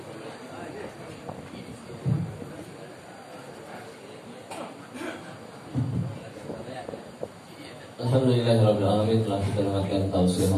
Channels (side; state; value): both; identical; correlation 1.00